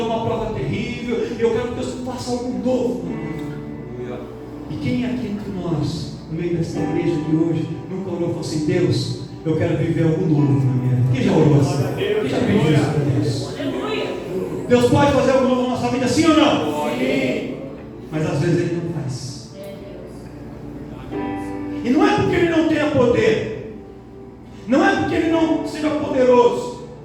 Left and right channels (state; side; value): identical; both; correlation 1.00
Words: numa prova terrível, e eu quero que Deus faça algo novo na minha vida. E quem aqui entre nós, no meio dessa igreja de hoje, nunca orou e falou assim: Deus, eu quero viver algo novo na minha vida? Quem já orou assim? Quem já pediu isso para Deus? Deus pode fazer algo novo na nossa vida, sim ou não? Sim. Mas às vezes Ele não faz. E não é porque Ele não tenha poder, não é porque Ele não seja poderoso,